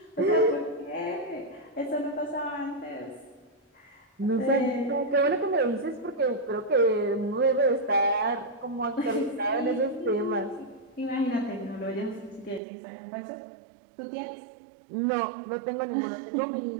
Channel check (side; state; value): left; drops out; at 12.6 s